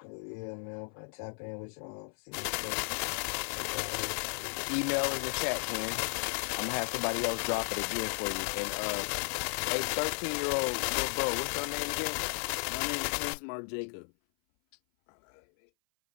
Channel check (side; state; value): right; silent; 55 dB below the other